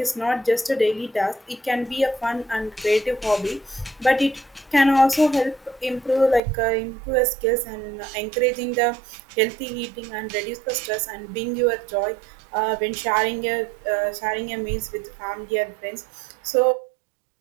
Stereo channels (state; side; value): drops out; left; at 6.4 s